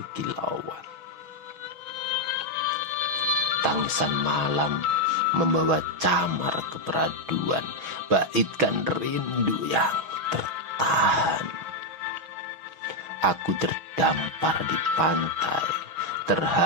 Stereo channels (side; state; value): left; late; 6.2 ms